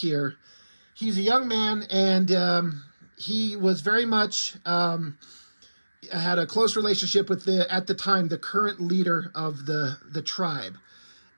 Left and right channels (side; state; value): both; inverted; correlation -1.00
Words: he's a young man, and he was very much had a close relationship with at the time, the current leader of the tribe.